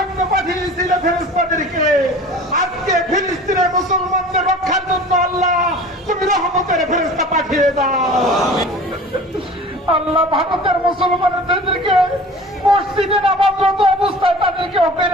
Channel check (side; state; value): both; normal; correlation 0.41